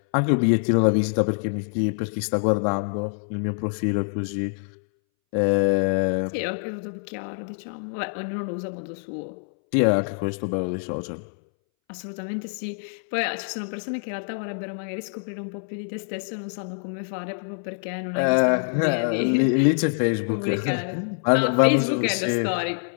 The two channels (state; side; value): silent; right; 62 dB below the other